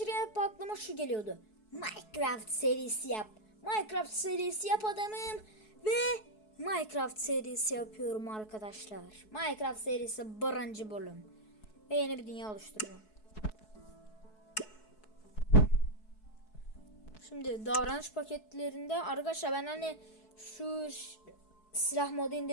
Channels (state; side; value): late; right; 4.7 ms